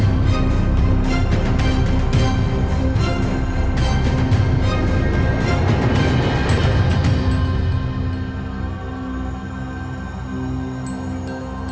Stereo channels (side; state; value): both; identical; correlation 1.00